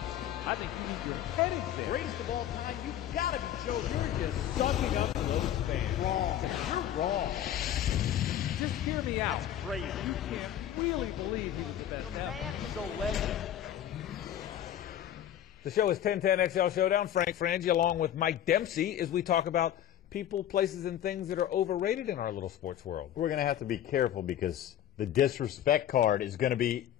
I think you need your head examined. Greatest of all time, you've got to be Joe. You're just sucking up those fans. Wrong. You're wrong. Just hear me out. That's crazy. You can't really believe he's the best. The man is a legend. The show is 1010 XL Showdown. Frank Frangie along with Mike Dempsey as we talk about people, places, and things that are overrated in our little sports world. We're going to have to be careful because the disrespect card is going to be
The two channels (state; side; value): quieter; right; 11.1 dB